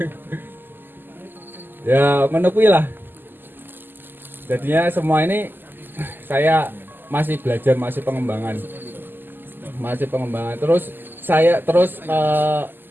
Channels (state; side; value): late; left; 0.093 ms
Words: Ya, menepui lah. Jadinya semua ini saya masih belajar, masih pengembangan. Terus saya